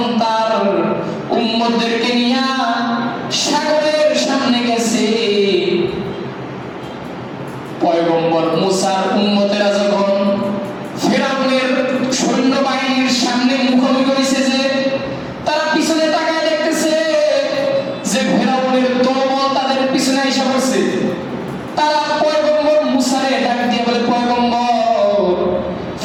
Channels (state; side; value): identical; both; correlation 1.00